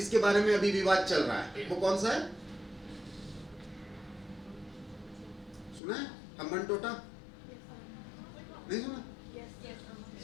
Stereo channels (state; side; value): drops out; right; at 5.8 s